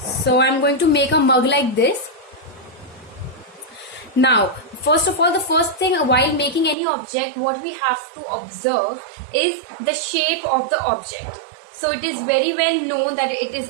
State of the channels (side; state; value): left; drops out; at 6.8 s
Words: I'm going to make a mug like this. Now, first of all, the first thing while making any object, what we have to observe is the shape of the object. So it is very well known that it is